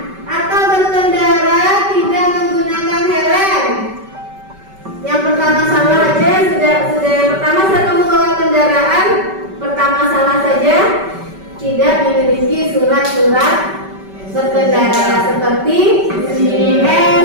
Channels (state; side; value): late; left; 5.2 ms